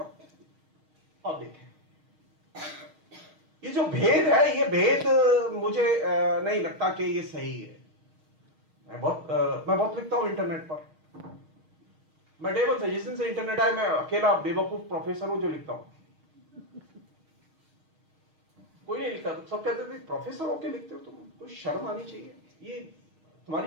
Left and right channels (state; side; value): late; left; 6.5 ms